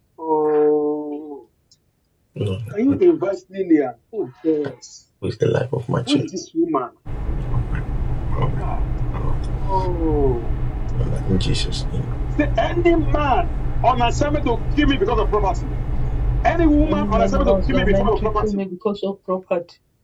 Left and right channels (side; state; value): both; identical; correlation 1.00